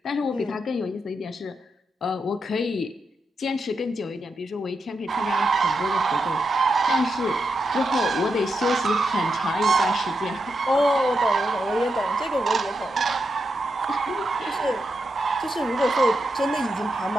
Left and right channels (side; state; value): both; normal; correlation 0.85